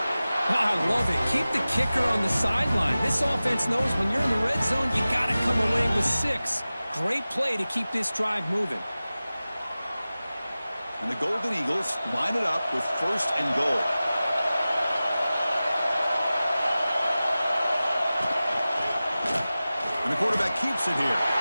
I love it. Keep the kicker on the sideline. This offense knows when you're in the red zone, you got to come away with 6. Great play to keep this drive moving. And the Golden Eagles line it up with first and goal. And the quarterback keeps it here.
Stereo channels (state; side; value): inverted; both; correlation -0.96